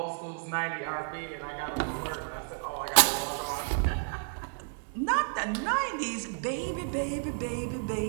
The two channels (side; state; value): left; silent; 57 dB below the other